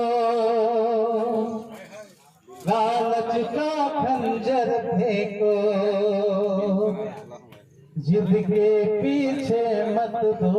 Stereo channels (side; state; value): both; identical; correlation 1.00